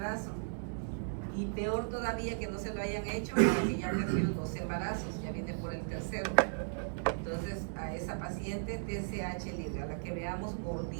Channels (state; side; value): silent; left; digital silence